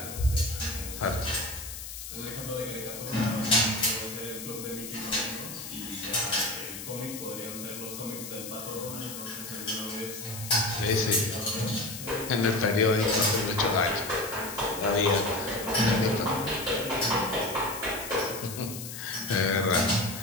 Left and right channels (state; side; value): noise; left; hiss, 9 dB below the sound